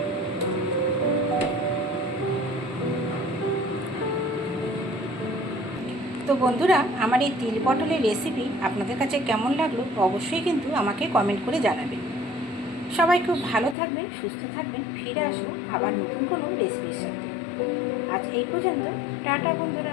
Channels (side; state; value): right; drops out; at 13.8 s